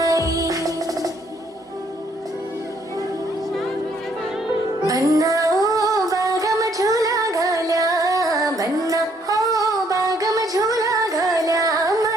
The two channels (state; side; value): normal; both; correlation 0.68